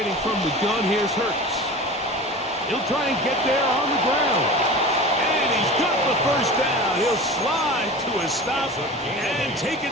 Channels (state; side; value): normal; both; correlation 0.35